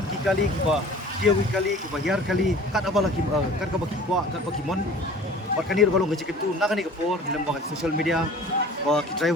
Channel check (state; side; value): normal; both; correlation 0.45